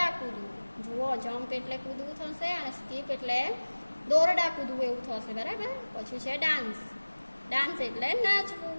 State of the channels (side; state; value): both; inverted; correlation -1.00